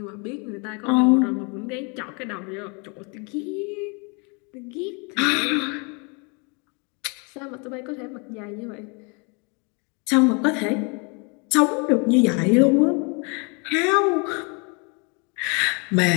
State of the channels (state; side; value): quieter; right; 33.2 dB